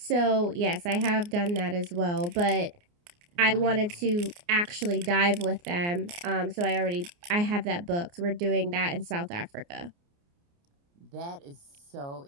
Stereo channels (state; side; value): late; left; 29 ms